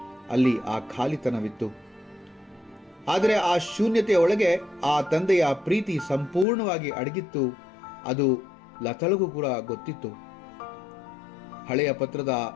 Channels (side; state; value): right; drops out; at 6.5 s